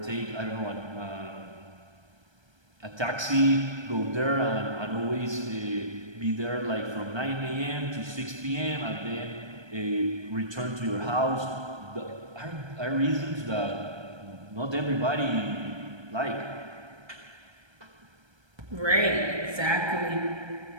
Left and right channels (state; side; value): late; left; 1.3 ms